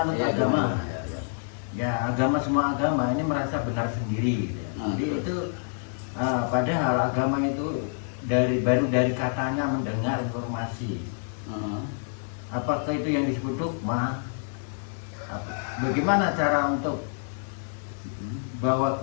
Ya, agama. ya. Ya, agama, semua agama ini merasa benar sendiri gitu ya. Jadi itu padahal agama itu baru dari katanya mendengar informasi. Apakah itu yang disebut dogma? Bagaimana cara untuk bawa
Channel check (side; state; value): right; silent; digital silence